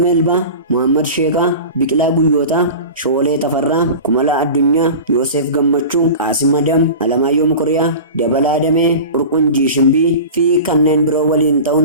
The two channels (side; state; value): both; inverted; correlation -0.33